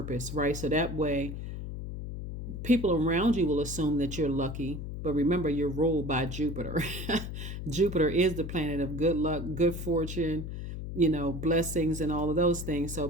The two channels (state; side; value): noise; left; hum, 7 dB below the sound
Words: right? So that way people around you will assume that you're lucky. But remember, you're ruled by Jupiter. Jupiter is the planet of good luck, good fortune, blessings and all of those things. So